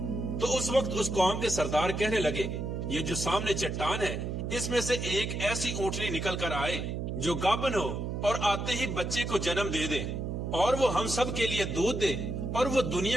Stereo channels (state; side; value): noise; right; hum, 3 dB below the sound